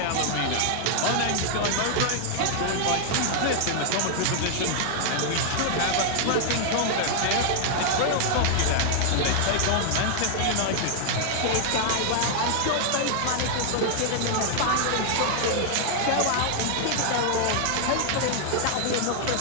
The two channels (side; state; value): both; different; correlation 0.00